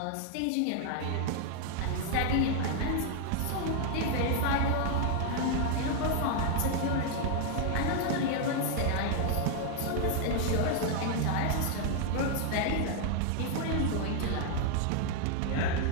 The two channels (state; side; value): different; both; correlation 0.00